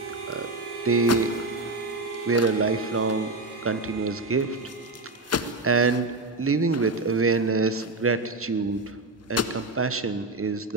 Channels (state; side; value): quieter; left; 3.0 dB